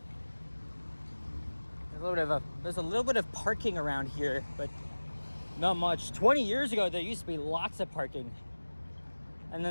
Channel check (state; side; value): inverted; both; correlation -1.00